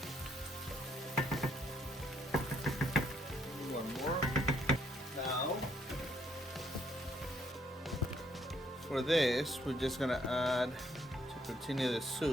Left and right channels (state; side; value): normal; both; correlation 0.70